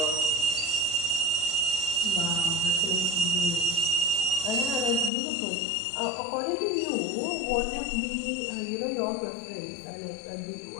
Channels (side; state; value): right; drops out; at 5.1 s